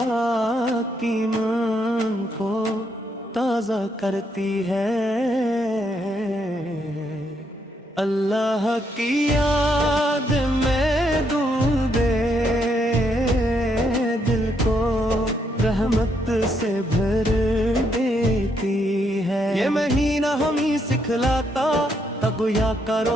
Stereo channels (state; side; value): normal; both; correlation 0.75